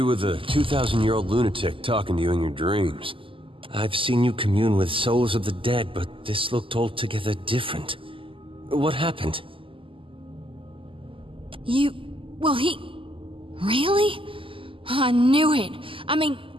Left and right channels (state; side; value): late; left; 0.25 ms